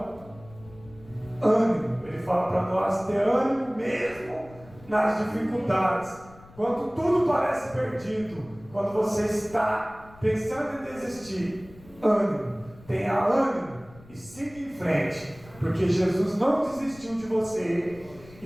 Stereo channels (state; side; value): noise; left; rumble, 22 dB below the sound